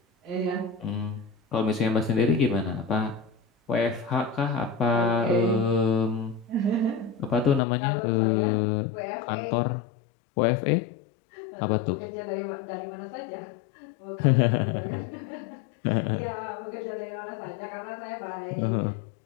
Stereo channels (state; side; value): drops out; right; at 7.6 s